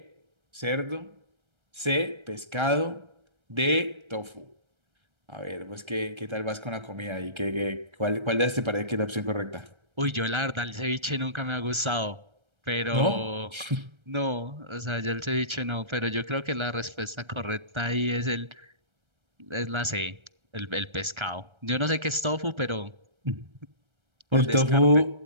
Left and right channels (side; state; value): left; late; 1.3 ms